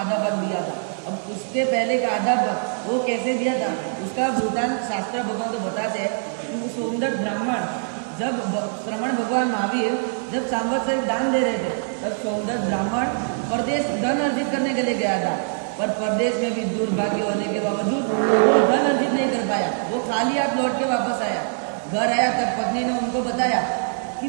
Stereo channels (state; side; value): silent; left; digital silence